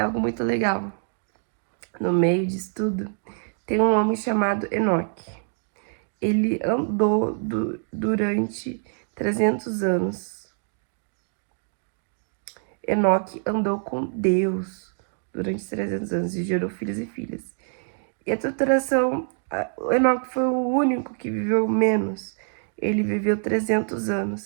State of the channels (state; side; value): silent; left; 61 dB below the other